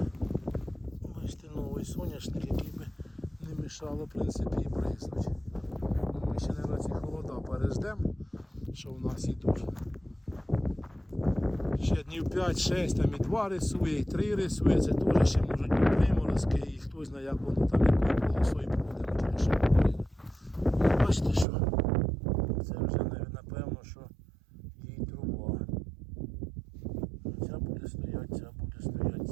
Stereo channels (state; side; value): drops out; left; at 21.5 s